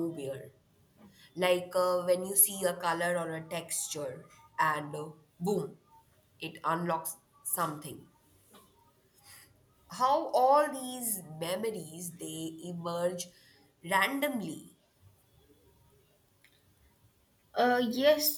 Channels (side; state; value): both; identical; correlation 1.00